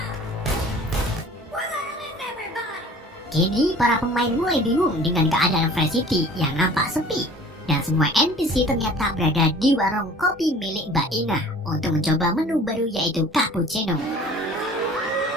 Kini para pemain mulai bingung dengan keadaan Fresh City yang nampak sepi. Dan semua NPC ternyata berada di warung kopi milik Mbak Ina untuk mencoba menu baru yaitu cappuccino.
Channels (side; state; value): both; normal; correlation 0.47